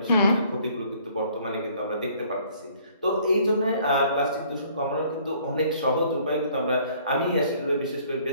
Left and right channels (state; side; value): inverted; both; correlation -0.59